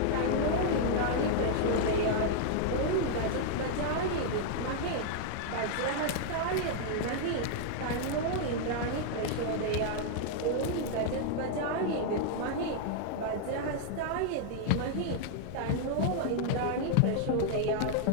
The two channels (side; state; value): both; different; correlation 0.00